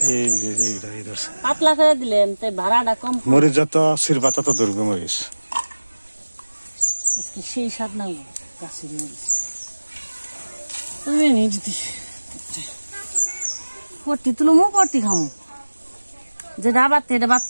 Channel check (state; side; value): inverted; both; correlation -1.00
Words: পাতলা করে দিলেন তাই ভাড়াটা কম মরিচ যত সিরবা তত দুর্গ মরিচ সেই স্বাদ না গাছের মরিচ তুমি নিয়ে যদি পট্টি তুলমো পট্টি খামো যেটা বাড়তে এটা